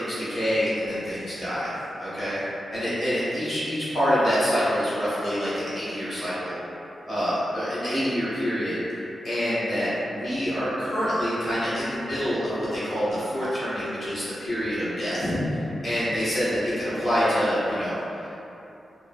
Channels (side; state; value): both; normal; correlation 0.89